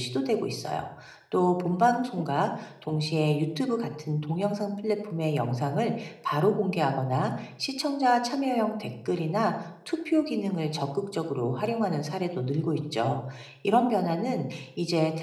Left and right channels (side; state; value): both; identical; correlation 1.00